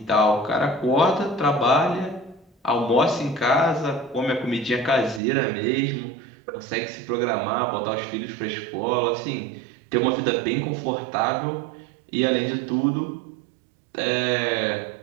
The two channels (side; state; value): left; drops out; at 5.2 s